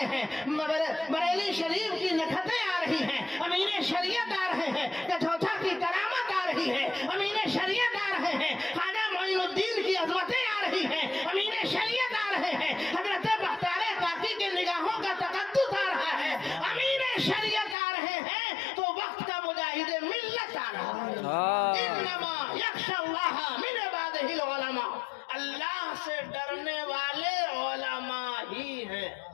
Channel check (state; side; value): drops out; right; at 17.8 s